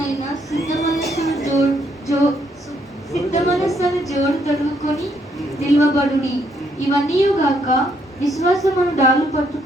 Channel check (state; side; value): normal; both; correlation 0.72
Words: సిద్ధ మనస్సును జోడు తొడుగుకొని నిల్వబడుడి. ఇవన్నీ గాక విశ్వాసమును డాలు